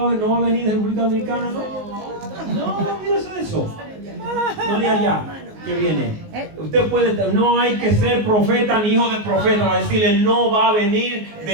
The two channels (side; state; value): left; late; 19 ms